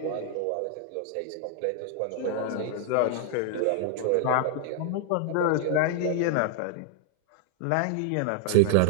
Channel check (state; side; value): different; both; correlation 0.00